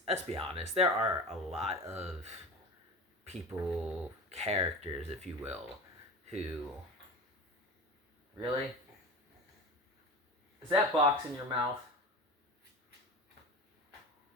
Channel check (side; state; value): both; normal; correlation 0.31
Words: be honest, there are a lot of people, characters, if you will, who... Really? Is that box in your mouth?